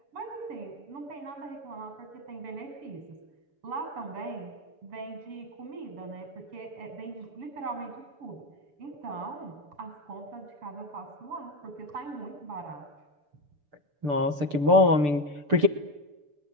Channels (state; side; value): late; left; 6.8 ms